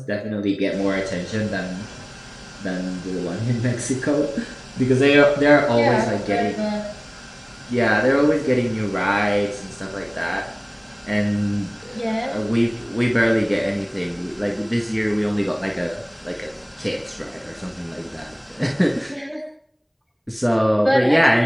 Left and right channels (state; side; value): identical; both; correlation 1.00